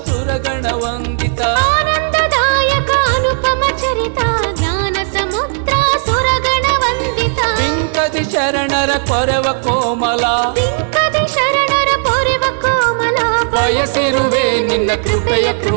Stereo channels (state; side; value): silent; left; digital silence